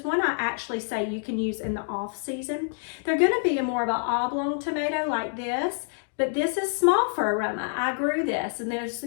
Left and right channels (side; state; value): right; silent; digital silence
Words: one I actually say you can use in the off season, they're going to be more of an oblong tomato like this. But this is small for Aroma. I grew this, and there's